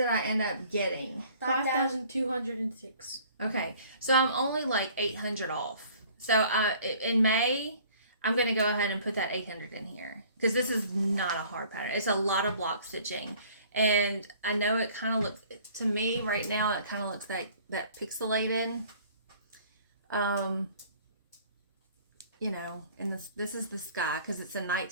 I end up getting? 5,206. Okay, so I'm only like 800 off. So in May, I'm going to go ahead and put that 800 in here because this is not a hard pattern. It's a lot of block stitching. And I know it kind of looks, to me right now, it kind of looks like that pixelated. You know, and this is the sky because it's a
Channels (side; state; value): both; inverted; correlation -0.53